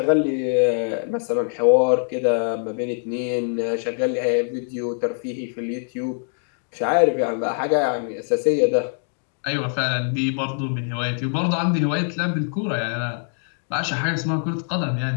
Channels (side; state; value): right; silent; 63 dB below the other